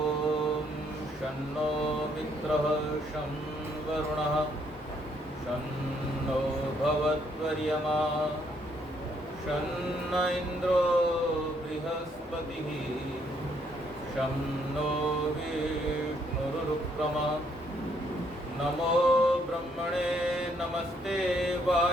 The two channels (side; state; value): both; normal; correlation 0.70